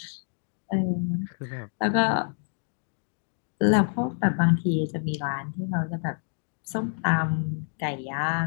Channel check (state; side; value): silent; right; 60 dB below the other